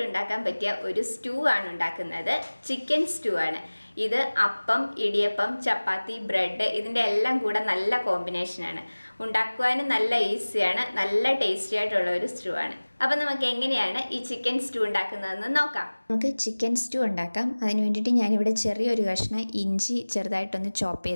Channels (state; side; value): inverted; both; correlation -1.00